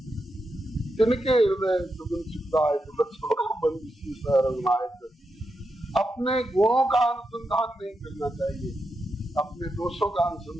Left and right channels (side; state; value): both; normal; correlation 0.86